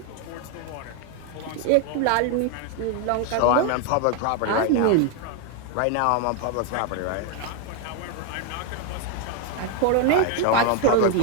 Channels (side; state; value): both; different; correlation 0.01